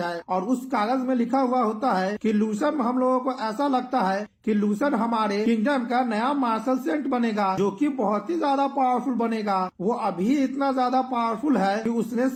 और उस कागज में लिखा हुआ होता है कि लूसन, हम लोगों को ऐसा लगता है कि लूसन हमारे किंगडम का नया मार्शल सेंट बनेगा जो कि बहुत ही ज्यादा पावरफुल बनेगा। वो अभी इतना ज्यादा पावरफुल है कि उसने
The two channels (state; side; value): identical; both; correlation 1.00